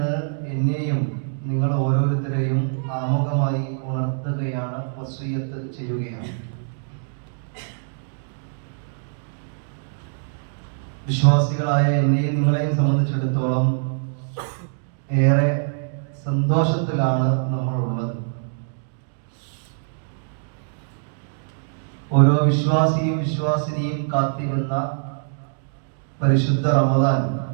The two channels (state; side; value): silent; left; digital silence